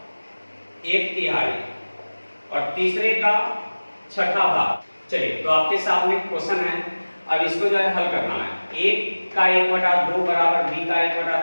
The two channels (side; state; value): both; inverted; correlation -1.00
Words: 1/3 और तीसरे का 1/6 भाग। चलिए तो आपके सामने क्वेश्चन है, अब इसको जो है हल करना है। a का 1/2 बराबर b का